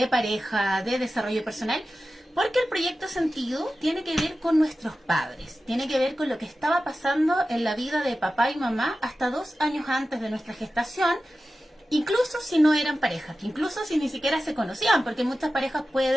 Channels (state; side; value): normal; both; correlation 0.94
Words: pareja, de desarrollo personal. Porque el proyecto Sentido tiene que ver con nuestros padres, tiene que ver con lo que estaba pasando en la vida de papá y mamá hasta 2 años antes de nuestra gestación, incluso si no eran pareja, incluso si ni siquiera se conocían, porque muchas parejas